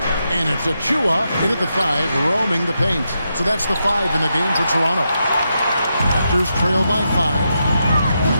And it's Achua in at the 5, roaming the paint. So that's the 5 in the game for Toronto. Raptors trail by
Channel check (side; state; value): both; inverted; correlation -0.84